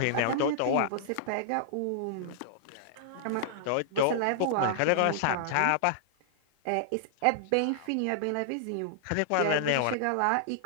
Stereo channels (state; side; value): different; both; correlation -0.01